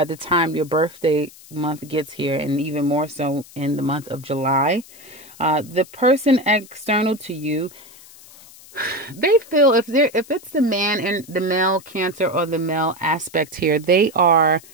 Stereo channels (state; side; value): noise; left; hiss, 21 dB below the sound